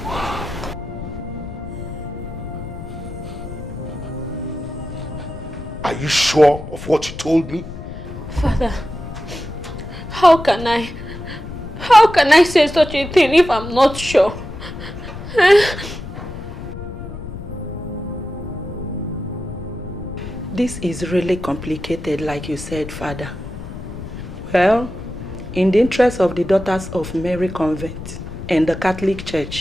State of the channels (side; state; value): left; noise; rumble, 11 dB below the sound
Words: Are you sure of what you told me? Father, how can I say such a thing if I'm not sure? This is really complicated, like you said, Father. Well, in the interest of the daughters of Mary Convent and the Catholic